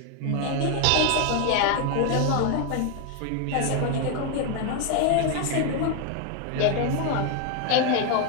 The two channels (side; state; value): both; different; correlation 0.01